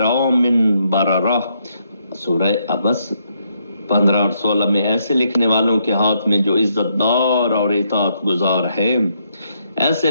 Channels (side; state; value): both; inverted; correlation -0.76